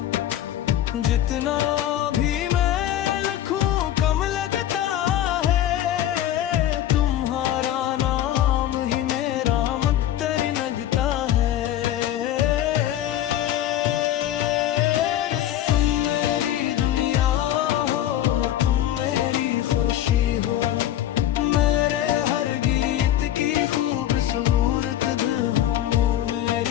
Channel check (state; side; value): quieter; right; 12.2 dB